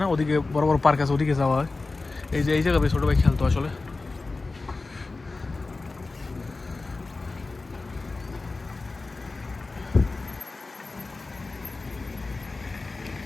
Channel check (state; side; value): quieter; right; 3.6 dB